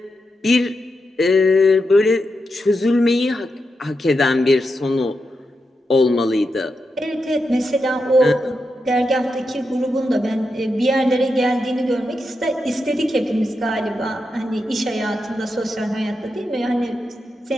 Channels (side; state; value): both; normal; correlation 0.86